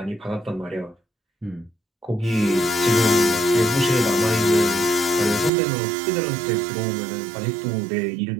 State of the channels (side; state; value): left; drops out; at 5.5 s